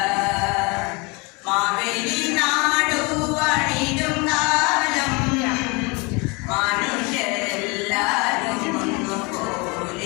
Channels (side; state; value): right; quieter; 28.4 dB